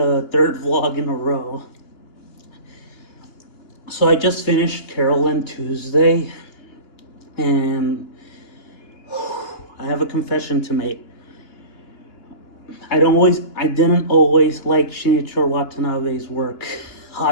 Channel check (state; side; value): late; right; 2.9 ms